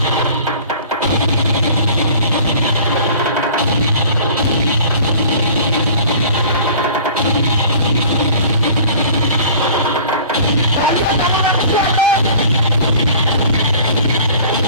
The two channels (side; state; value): both; inverted; correlation -0.47